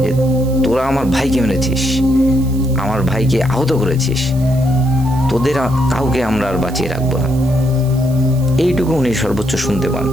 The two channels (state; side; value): noise; right; hiss, 20 dB below the sound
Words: যে তোরা আমার ভাইকে মেরেছিস, আমার ভাইকে আহত করেছিস, তোদের কাউকে আমরা আর বাঁচিয়ে রাখবো না। এইটুকু উনি সর্বোচ্চ শুনতে পান।